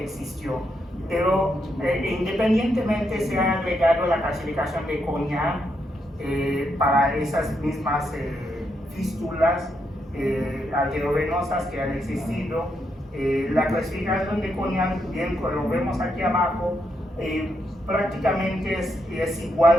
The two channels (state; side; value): normal; both; correlation 0.80